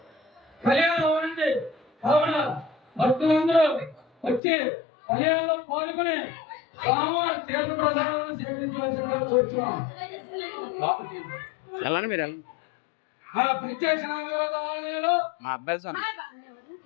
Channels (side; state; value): right; drops out; at 4.4 s